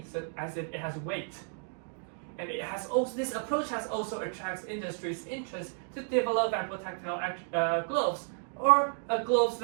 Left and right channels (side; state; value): left; silent; 56 dB below the other